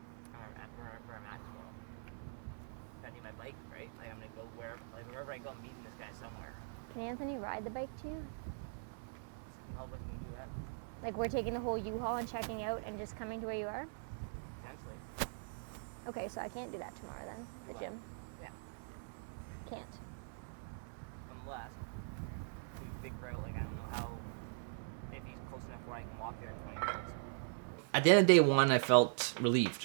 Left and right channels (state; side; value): silent; left; 50 dB below the other